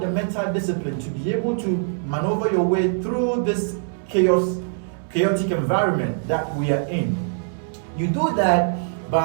the mental discipline to be able to maneuver your way through this chaotic environment that we are in? You do that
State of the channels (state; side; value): silent; left; 64 dB below the other